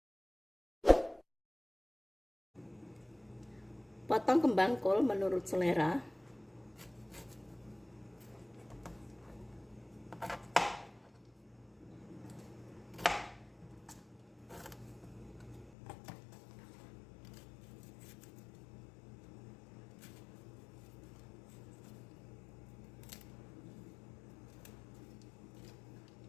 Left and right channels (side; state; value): right; drops out; at 15.7 s